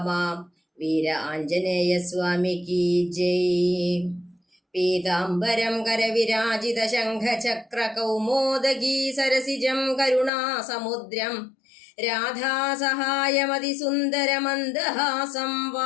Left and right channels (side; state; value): right; drops out; at 10.3 s